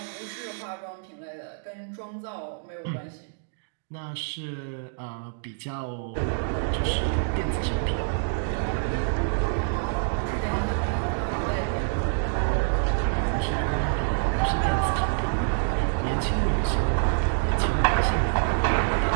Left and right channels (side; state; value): left; silent; digital silence